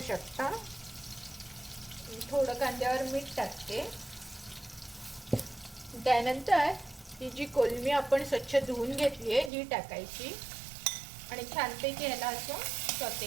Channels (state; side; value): drops out; left; at 9.5 s